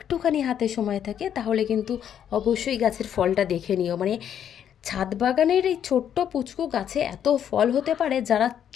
হাতে সময় থাকে তাহলে কিন্তু অবশ্যই গাছের ফলটা দেখে নিও। মানে ছাদ বাগানের এই ছোট্ট পুচকু গাছে এত ফল হতে পারে, যারা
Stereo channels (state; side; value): quieter; right; 9.3 dB